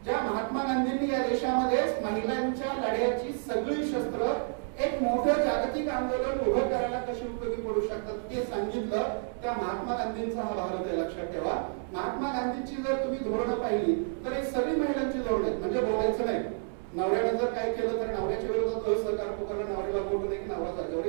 ज्या महात्मा गांधींनी या देशामध्ये महिलांच्या लढ्याची सगळी शस्त्र एक मोठं जागतिक आंदोलन उभं करायला कशी उपयोगी पडू शकतात ते सांगितलं, त्या महात्मा गांधींचा हा भारत आहे. लक्षात ठेवा, महात्मा गांधींची जर तुम्ही धोरणं पाहिली तर हे सगळी महिलांची धोरणं आहेत. म्हणजे बोलायचं नाही, नवऱ्याने जर काय केलं तर नवऱ्याच्या विरोधात असहकार पुकारला, नवऱ्याला बोलू नये की नवरा जागेवर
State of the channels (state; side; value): silent; left; 58 dB below the other